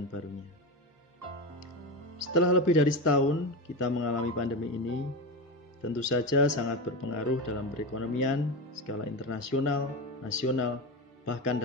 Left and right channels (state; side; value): normal; both; correlation 0.19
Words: barunya. Setelah lebih dari setahun kita mengalami pandemi ini, tentu saja sangat berpengaruh dalam perekonomian, skala internasional, nasional, bahkan